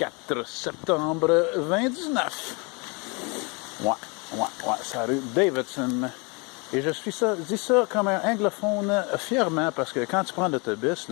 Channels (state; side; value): quieter; right; 30.7 dB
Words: septembre 2019. Ouais, c'est la rue Davidson. Et je dis ça comme un anglophone fièrement, parce que quand tu prends l'autobus,